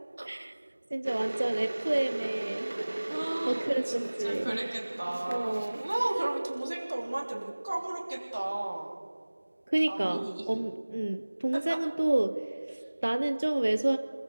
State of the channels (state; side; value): inverted; both; correlation -1.00